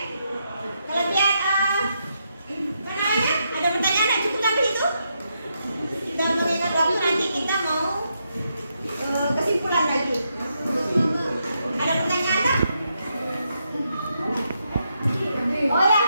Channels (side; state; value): both; inverted; correlation -0.81